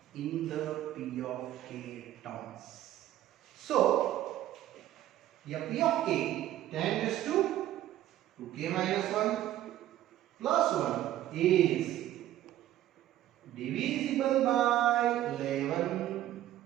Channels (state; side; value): quieter; left; 13.2 dB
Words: in the p of k terms. So, here p of k, 10 raised to 2k minus 1 plus 1 is divisible by 11.